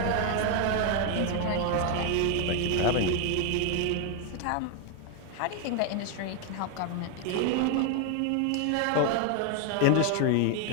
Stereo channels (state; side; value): different; both; correlation 0.01